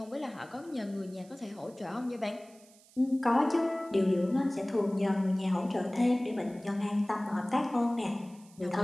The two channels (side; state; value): right; noise; hiss, 26 dB below the sound